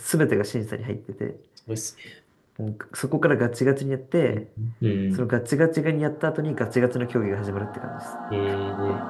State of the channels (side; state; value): both; identical; correlation 1.00